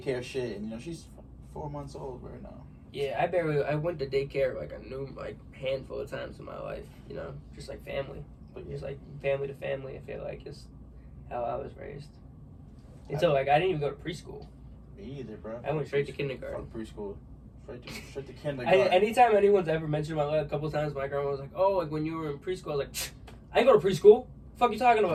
shit, and she's 4 months old right now. Yeah, I went to daycare like a handful of times in my life. Just like family, but just like family to family. I feel like is how I was raised. Until I didn't even go to preschool. Me either, bro. I went straight to kindergarten. Fuck preschool. Straight to kindergarten. Anytime anyone's ever mentioned my life, a couple of times, my grandma was like, "Oh, like when you were in preschool," I was like, "I didn't go to preschool. The fuck you talking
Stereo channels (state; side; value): identical; both; correlation 1.00